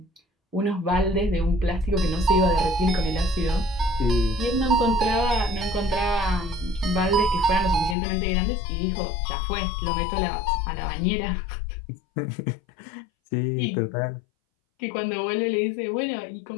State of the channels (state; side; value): drops out; right; at 8.0 s